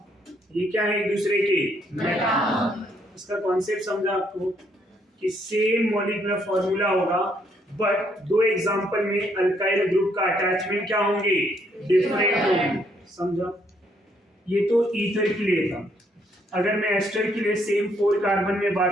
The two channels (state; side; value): normal; both; correlation 0.70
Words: ये क्या है? एक दूसरे के मेटा। इसका कॉन्सेप्ट समझा आपको कि सेम मॉलिक्यूलर फॉर्मूला होगा बट दो एग्जांपल में अल्काइल ग्रुप का अटैचमेंट क्या होंगे? डिफरेंट होंगे। समझा? ये तो ईथर के लिए था। अगर मैं एस्टर के लिए सेम 4 कार्बन में